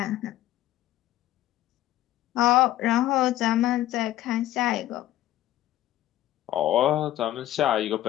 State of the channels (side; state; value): right; quieter; 14.1 dB